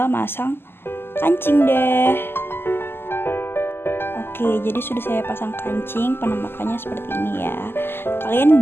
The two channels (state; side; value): late; right; 0.11 ms